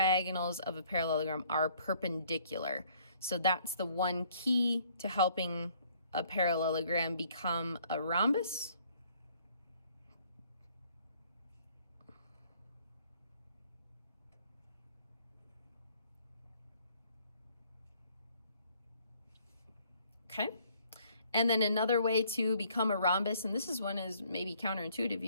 of a parallelogram are perpendicular. So that's the one key to helping a parallelogram become a rhombus. Okay, and then another way to become a rhombus, and this is one is maybe counterintuitive,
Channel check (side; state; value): both; inverted; correlation -0.62